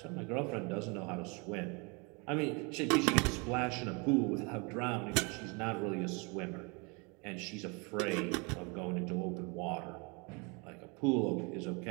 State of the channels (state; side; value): quieter; left; 30.7 dB